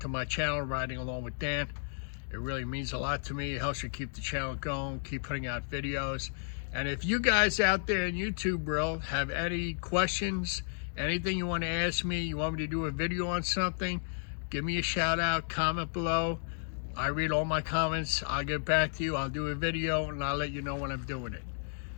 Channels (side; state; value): right; silent; digital silence